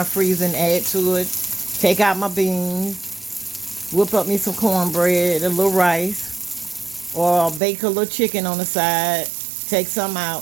freezer and add to it, take out my beans, whip up me some cornbread, a little rice, or bake a little chicken on the side, take some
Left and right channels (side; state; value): left; drops out; at 7.6 s